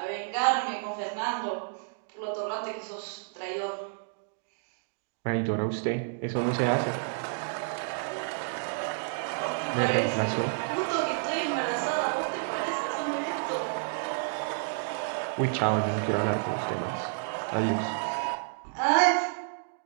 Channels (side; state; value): left; silent; digital silence